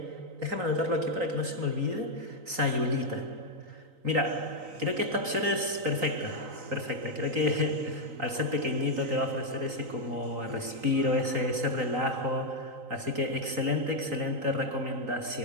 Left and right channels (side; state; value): left; late; 3.9 ms